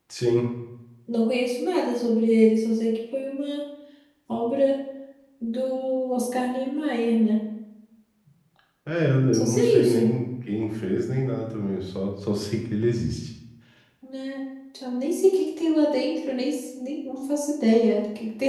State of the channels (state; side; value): identical; both; correlation 1.00